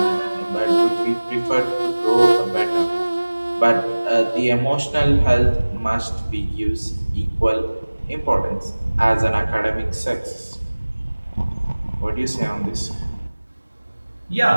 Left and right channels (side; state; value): both; inverted; correlation -1.00